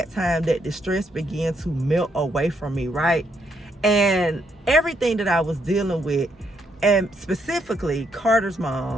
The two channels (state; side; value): normal; both; correlation 0.76